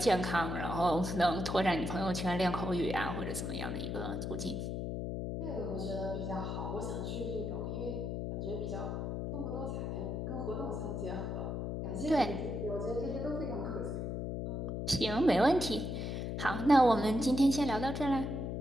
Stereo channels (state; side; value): noise; left; hum, 3 dB below the sound